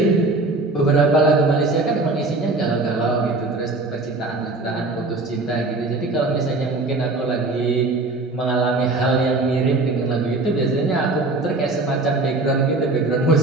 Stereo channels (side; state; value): left; quieter; 3.2 dB